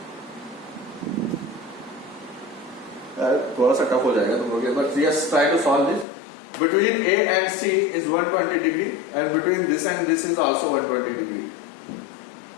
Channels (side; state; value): right; drops out; at 6.1 s